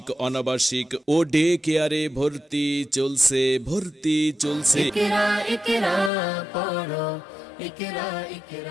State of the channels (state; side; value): drops out; right; at 6.1 s